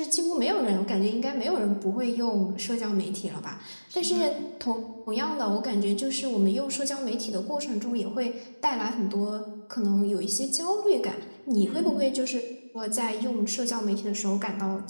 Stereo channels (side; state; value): both; inverted; correlation -1.00